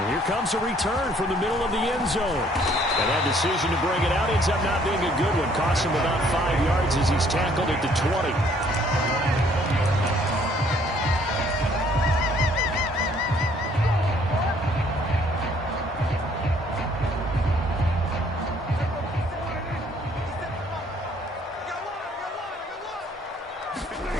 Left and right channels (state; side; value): normal; both; correlation 0.62